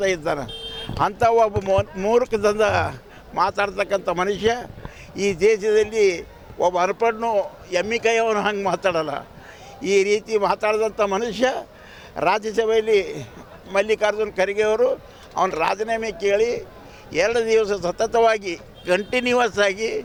ಇದ್ದಾನೆ. ಅಂಥ ಒಬ್ಬ ಮೂರ್ಖದಿಂದ ಮಾತಾಡ್ತಕ್ಕಂಥ ಮನುಷ್ಯ ಈ ದೇಶದಲ್ಲಿ ಒಬ್ಬ ಅರ್ಪಣ್ಣು ಎಮ್ಮಿ ಕೈಯವನು ಹಂಗೆ ಮಾತಾಡಲ್ಲ. ಈ ರೀತಿ ಮಾತಾಡಿದಂಥ ಮನುಷ್ಯ ರಾಜ್ಯಸಭೆಯಲ್ಲಿ ಮಲ್ಲಿಕಾರ್ಜುನ್ ಖರ್ಗೆ ಅವರು ಅವನ ರಾಜೀನಾಮೆ ಕೇಳಿ 2 ದಿವಸ ಸತತವಾಗಿ ಕಂಟಿನ್ಯೂವಸ್ ಆಗಿ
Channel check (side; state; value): both; identical; correlation 1.00